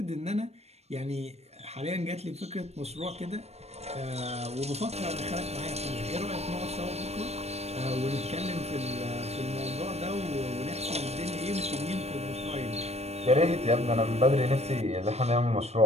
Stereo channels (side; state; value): left; late; 0.31 ms